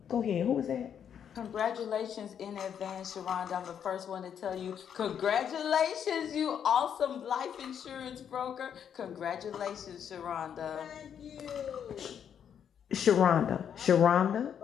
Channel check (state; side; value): quieter; right; 8.4 dB